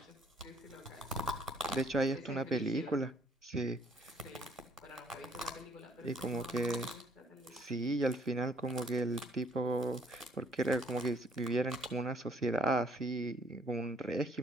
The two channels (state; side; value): normal; both; correlation 0.64